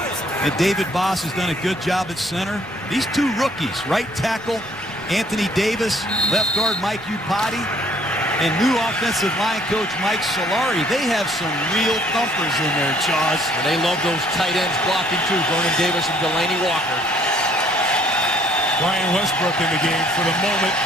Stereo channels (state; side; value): noise; left; rumble, 27 dB below the sound